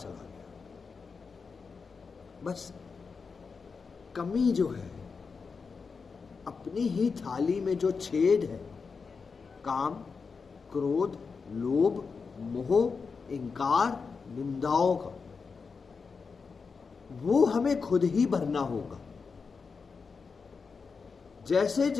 गया, बस कमी जो है, अपनी ही थाली में जो छेद है, काम, क्रोध, लोभ, मोह, इंकार, निंदाओं का, वो हमें खुद ही भरना होगा। जैसे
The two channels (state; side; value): quieter; right; 5.1 dB